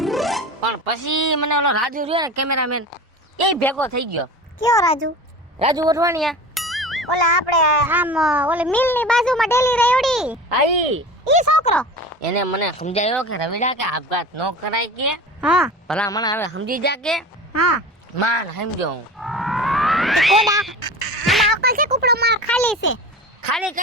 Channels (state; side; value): normal; both; correlation 0.34